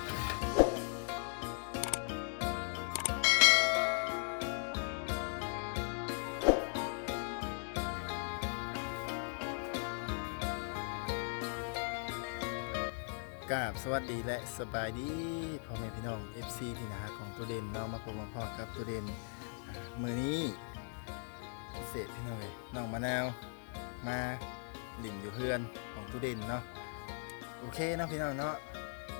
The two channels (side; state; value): right; silent; 52 dB below the other